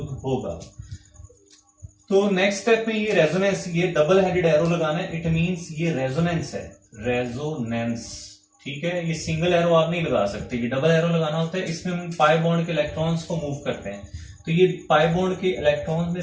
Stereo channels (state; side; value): identical; both; correlation 1.00